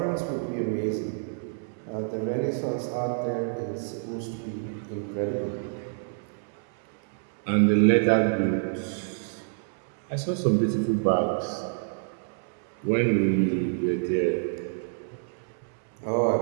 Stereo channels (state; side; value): silent; left; 59 dB below the other